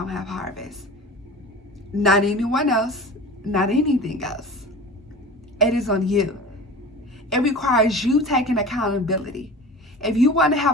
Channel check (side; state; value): both; normal; correlation 0.36